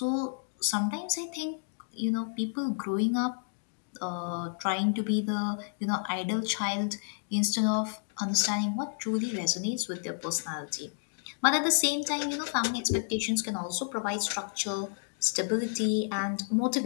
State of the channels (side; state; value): right; silent; digital silence